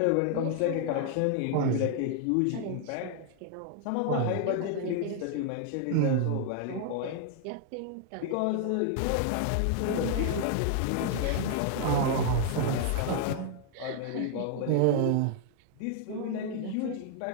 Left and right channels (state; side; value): different; both; correlation 0.00